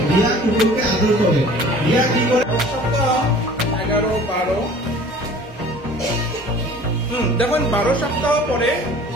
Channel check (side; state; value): both; normal; correlation 0.47